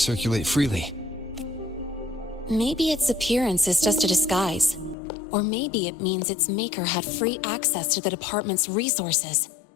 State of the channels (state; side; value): drops out; right; at 5.0 s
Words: freely? Maybe its appearance is just a disguise. Or maybe it means its maker had free access to the department's resources.